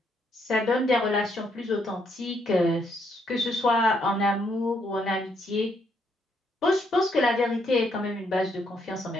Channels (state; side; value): normal; both; correlation 0.74